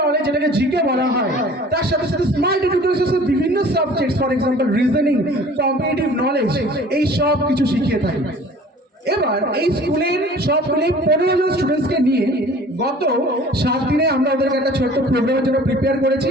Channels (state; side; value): normal; both; correlation 0.47